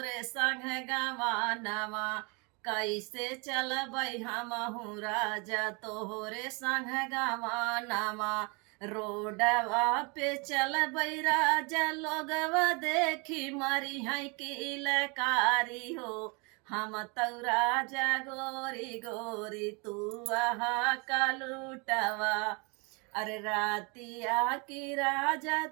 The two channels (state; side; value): quieter; left; 30.9 dB